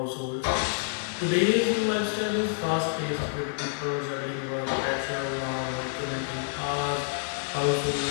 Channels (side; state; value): right; silent; digital silence